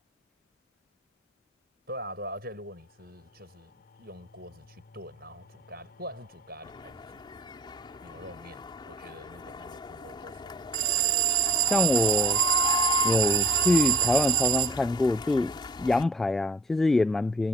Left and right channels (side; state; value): both; normal; correlation 0.46